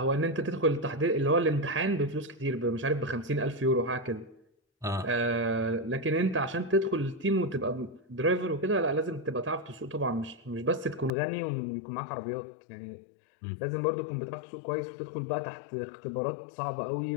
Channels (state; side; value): drops out; right; at 11.1 s